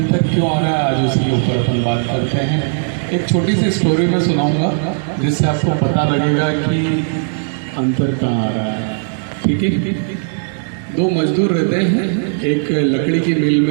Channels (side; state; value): left; silent; 68 dB below the other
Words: क्यों आ रहा है, आज उसके ऊपर अपन बात करते हैं। एक छोटी सी स्टोरी में सुनाऊंगा जिससे आपको पता लगेगा कि अंतर कहाँ आ रहा है। ठीक है, 2 मजदूर रहते हैं, एक लकड़ी की मिल